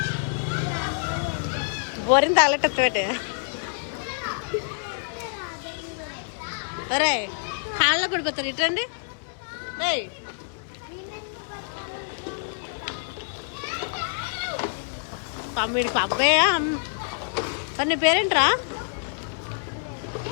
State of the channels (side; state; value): right; silent; 60 dB below the other